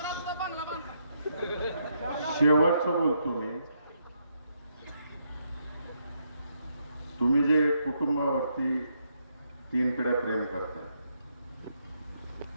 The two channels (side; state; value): both; inverted; correlation -0.77